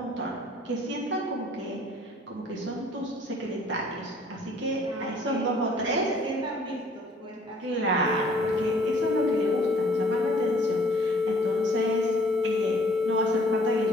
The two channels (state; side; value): normal; both; correlation 0.56